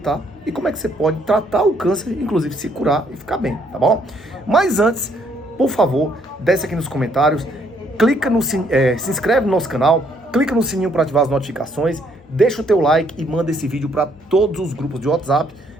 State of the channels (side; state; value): left; noise; hum, 27 dB below the sound